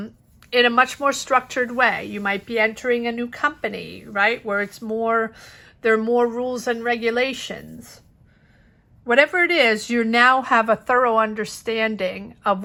a much more structured way. You might be entering a new company, right? Where there are more rules and regulations. Whatever it is, you now have a thorough understanding of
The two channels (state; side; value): identical; both; correlation 1.00